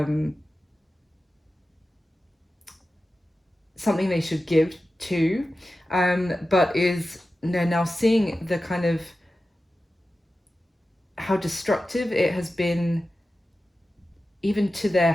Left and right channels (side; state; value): both; normal; correlation 0.93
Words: something they should give to, but they're now seeing the kind of how destructive it has been even to their